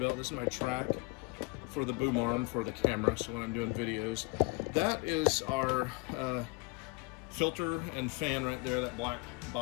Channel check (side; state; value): right; quieter; 27.4 dB